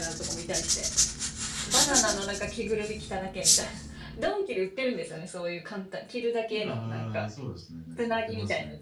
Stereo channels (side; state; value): both; identical; correlation 1.00